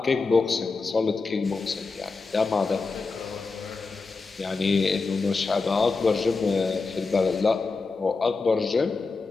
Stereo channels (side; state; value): right; quieter; 4.2 dB